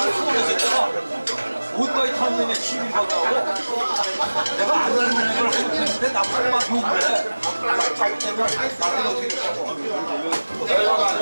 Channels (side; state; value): both; inverted; correlation -1.00